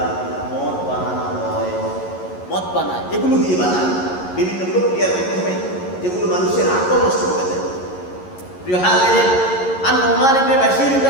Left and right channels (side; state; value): right; late; 11 ms